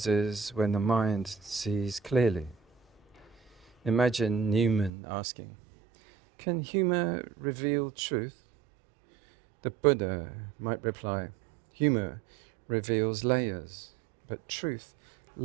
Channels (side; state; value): left; drops out; at 4.9 s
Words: when the mind sees clearly. Imagine Newman asking, "Can humour reveal truth?" The Buddha might reply, "Humour reveals layers, but truth